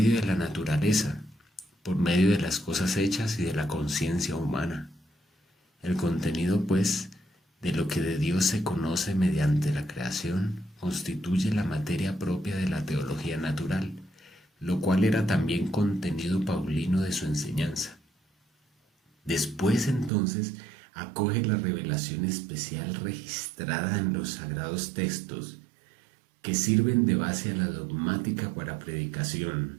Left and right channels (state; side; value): drops out; left; at 20.1 s